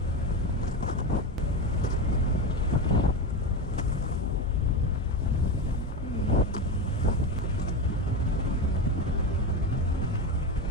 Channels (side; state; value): both; normal; correlation 0.19